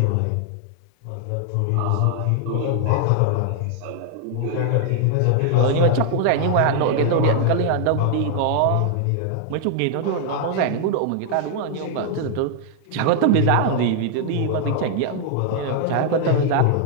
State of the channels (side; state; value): both; different; correlation 0.00